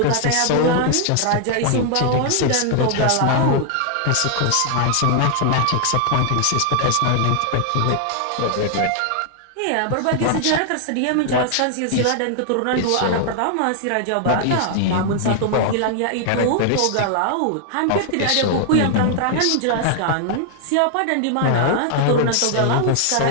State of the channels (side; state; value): both; different; correlation 0.00